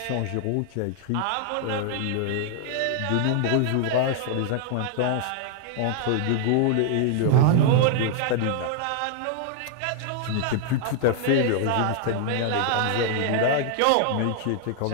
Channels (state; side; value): different; both; correlation 0.00